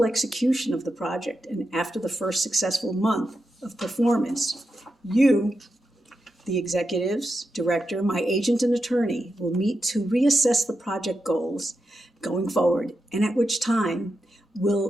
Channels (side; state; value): both; normal; correlation 0.87